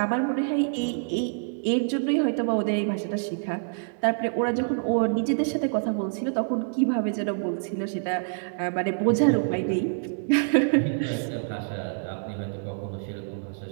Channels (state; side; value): silent; left; digital silence